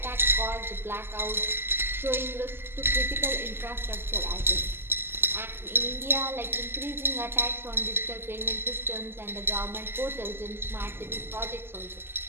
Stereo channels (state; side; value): late; left; 0.11 ms